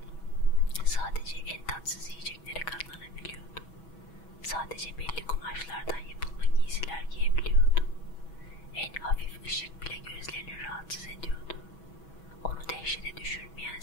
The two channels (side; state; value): right; late; 6.2 ms